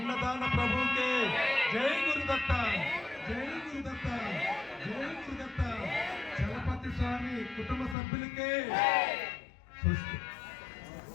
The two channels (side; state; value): right; drops out; at 8.0 s